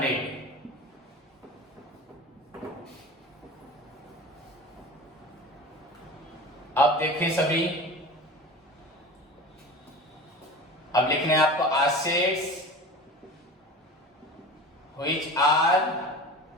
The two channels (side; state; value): both; normal; correlation 0.34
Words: अब देखिए सभी, अब लिखने हैं आपको assets which are